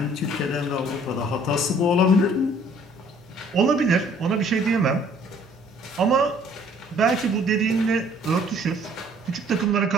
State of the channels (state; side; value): normal; both; correlation 0.58